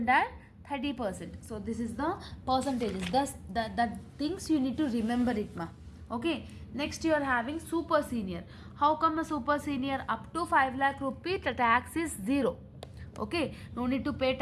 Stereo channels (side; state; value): both; identical; correlation 1.00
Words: and 30%. So this is the percentages. Thus the things you need to remember it ma. Okay, next you are having super senior. How come a super senior? Up to 5 lakh rupee the tax is zero. Okay, no need to pay